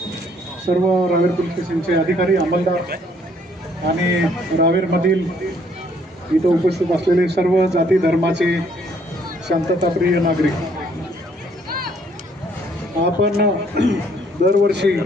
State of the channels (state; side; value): normal; both; correlation 0.65